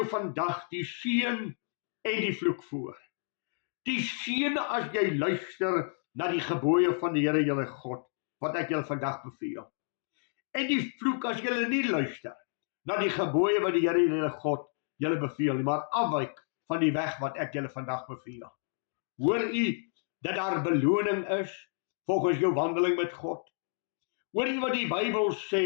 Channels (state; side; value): silent; right; 57 dB below the other